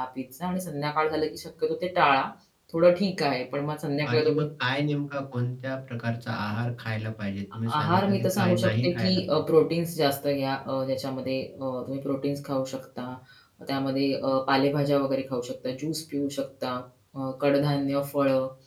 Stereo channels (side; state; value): both; identical; correlation 1.00